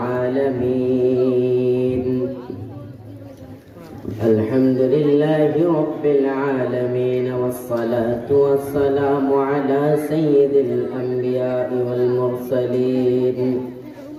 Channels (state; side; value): identical; both; correlation 1.00